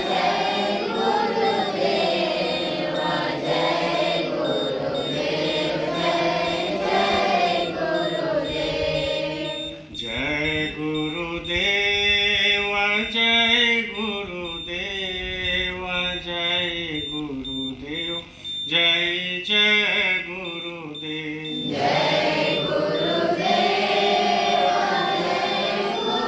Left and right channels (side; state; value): both; identical; correlation 1.00